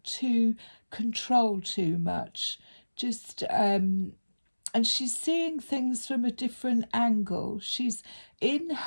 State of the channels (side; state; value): both; inverted; correlation -1.00